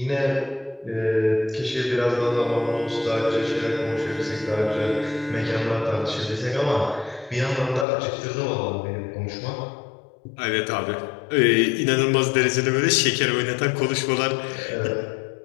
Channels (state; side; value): drops out; right; at 7.9 s